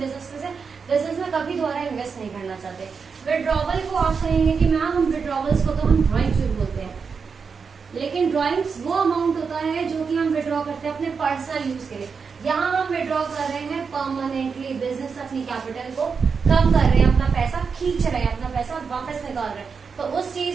में कभी दोबारा इन्वेस्ट नहीं करना चाहते। विड्रॉवल को आप कहेंगे कि मैम हम विड्रॉवल्स को तो हम ड्रॉइंग जरूर बोलते हैं, लेकिन ड्रॉइंग्स वो अमाउंट होता है जो कि हम विड्रॉ करते हैं अपने पर्सनल यूज के लिए। यहाँ हम विड्रॉ कर रहे हैं परमानेंटली, बिजनेस अपनी कैपिटल को कम कर रहे हैं, अपना पैसा खींच रहे हैं, अपना पैसा वापस निकाल रहे हैं, तो उस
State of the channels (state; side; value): quieter; left; 5.6 dB